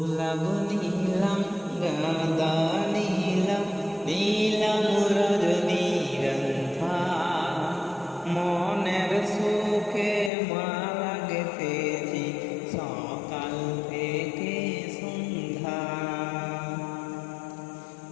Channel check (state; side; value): drops out; right; at 10.3 s